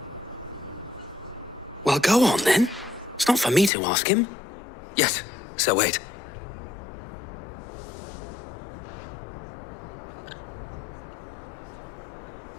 Well, go on then. It's not for me to ask him. Yes, Sir Wade.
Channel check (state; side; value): drops out; right; at 3.7 s